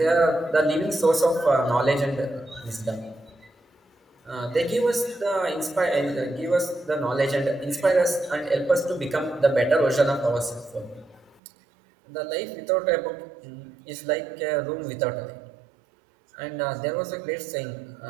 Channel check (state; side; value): drops out; left; at 11.4 s